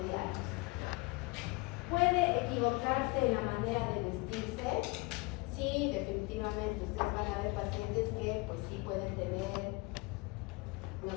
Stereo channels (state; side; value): quieter; right; 25.6 dB